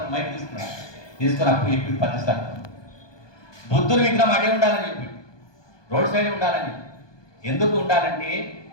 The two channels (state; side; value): late; right; 1.2 ms